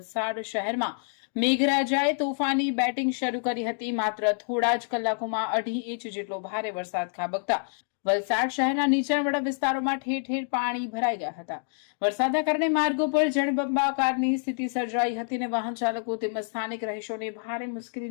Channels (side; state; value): right; silent; 59 dB below the other